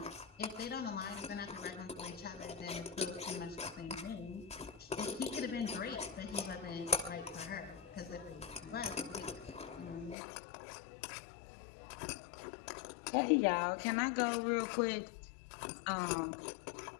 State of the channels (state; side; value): drops out; right; at 10.2 s